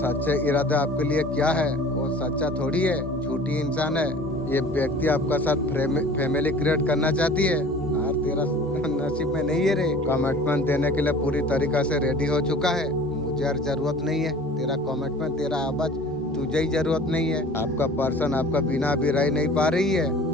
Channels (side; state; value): both; normal; correlation 0.45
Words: इरादा आपके लिए क्या है, वो सच्चा थोड़ी है, झूठी इंसान है। ये व्यक्ति आपका साथ फैमिली क्रिएट करना चाहती है और तेरा नसीब में नहीं है रे। कमिटमेंट देने के लिए पूरी तरीका से रेडी हो चुका है, मुझे और जरूरत नहीं है तेरा कमिटमेंट, तेरा आवाज तुझे ही जरूरत नहीं है। आपका पर्सन आपका बिना भी रह नहीं पा रही है,